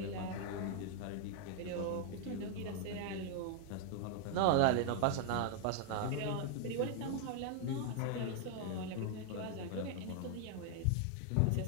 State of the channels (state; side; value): different; both; correlation 0.00